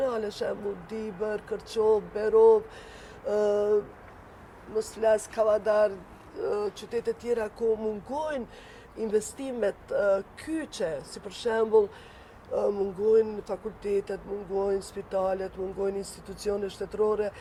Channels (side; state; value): both; identical; correlation 1.00